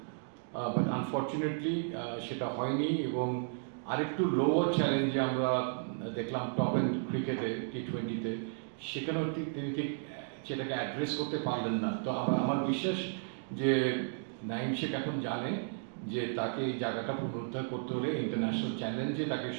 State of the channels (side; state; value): left; silent; digital silence